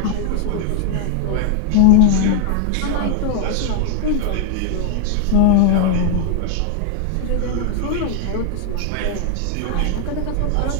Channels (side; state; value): both; different; correlation 0.00